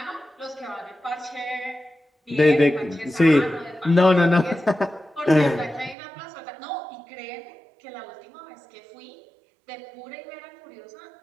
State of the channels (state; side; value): drops out; left; at 6.0 s